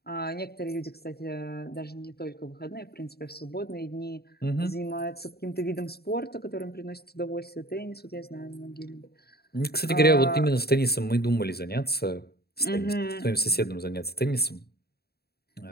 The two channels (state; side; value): late; right; 0.46 ms